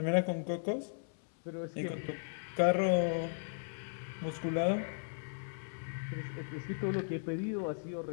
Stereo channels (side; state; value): right; silent; digital silence